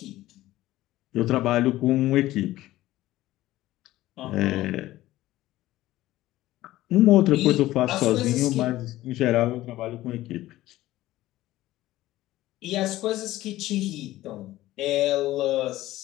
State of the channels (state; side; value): quieter; right; 15.9 dB